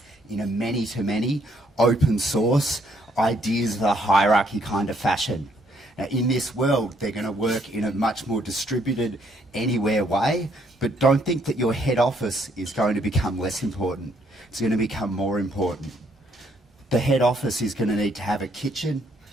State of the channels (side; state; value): both; normal; correlation 0.69